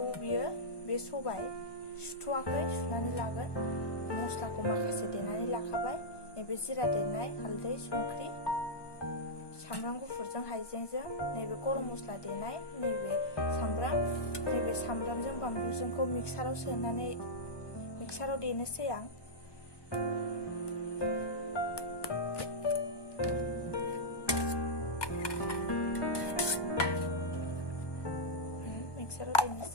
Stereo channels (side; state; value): right; late; 1.2 ms